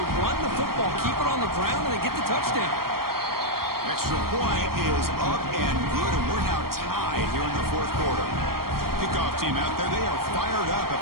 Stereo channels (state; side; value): late; left; 0.93 ms